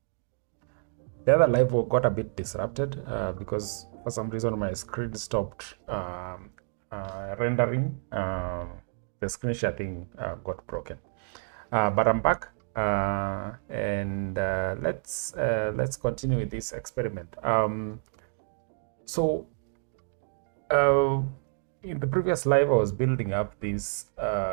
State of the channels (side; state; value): left; silent; digital silence